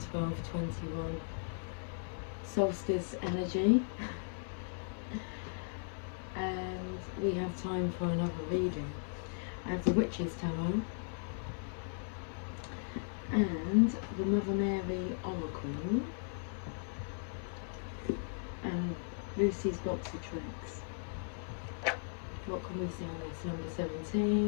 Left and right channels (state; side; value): silent; right; digital silence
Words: solstice energy and we have time for another reading. I have the Witch's Tarot and the Mother Mary Oracle and Lucy's box of tricks. What can we see on this? Number